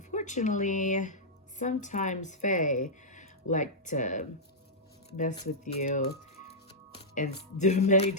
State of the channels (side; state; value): both; normal; correlation -0.10